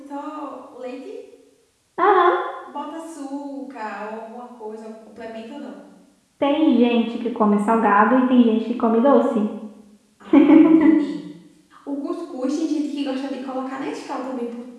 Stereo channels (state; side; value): identical; both; correlation 1.00